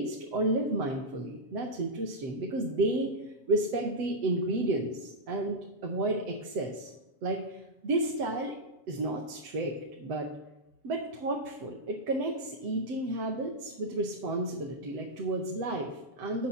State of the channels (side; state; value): left; late; 7.8 ms